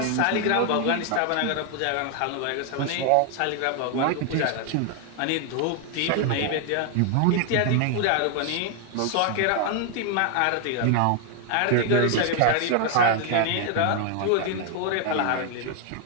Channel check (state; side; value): different; both; correlation 0.00